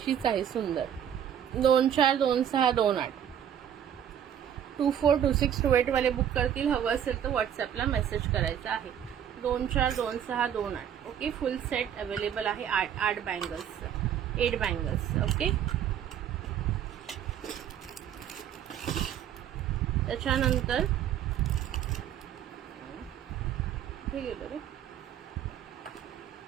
आहे सुंदर. 2 4 2 6 2 8 24 26 28 वाले बुक करतील. हवं असेल तर व्हॉट्सअपला मेसेज करायचा आहे. 2 4 2 6 2 8. ओके फुल सेट अवेलेबल आहे. 8 बँगल्स 8 बँगल्स. ओके त्याच्यानंतर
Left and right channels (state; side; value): quieter; left; 9.6 dB